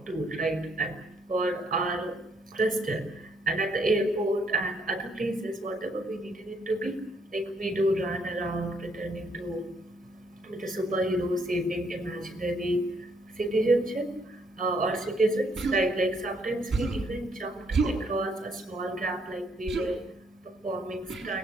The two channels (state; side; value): normal; both; correlation 0.70